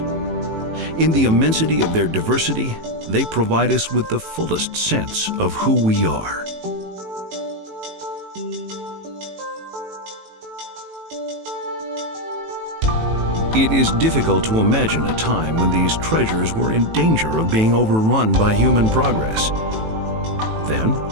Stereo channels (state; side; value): late; left; 18 ms